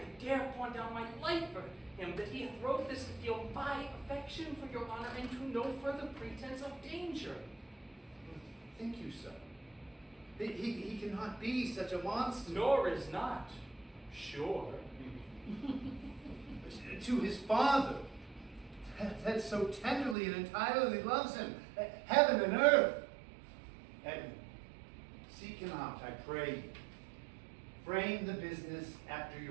dare pawn down my life for him, that he hath wrote this to feel my affection for your honor, and to no further pretense of danger. Think you so? He cannot be such a monster. Nor is not, sure. To his father, that so tenderly and entirely loves him, heaven and earth. Edmund, seek him out, I pray you. Frame the business after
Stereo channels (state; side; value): drops out; left; at 20.2 s